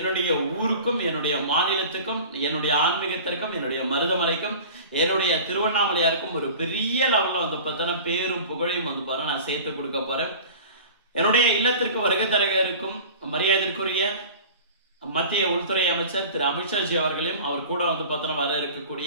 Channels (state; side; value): inverted; both; correlation -0.39